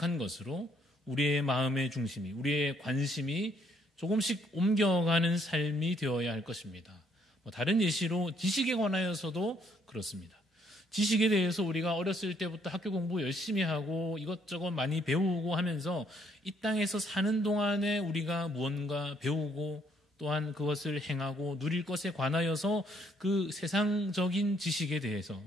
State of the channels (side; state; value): both; normal; correlation 0.68